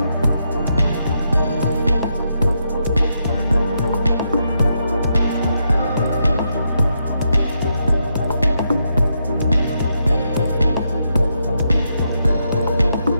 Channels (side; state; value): both; inverted; correlation -0.81